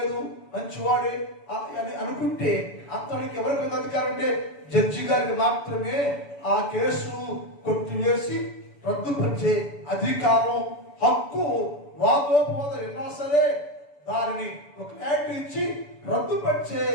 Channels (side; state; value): right; late; 7.0 ms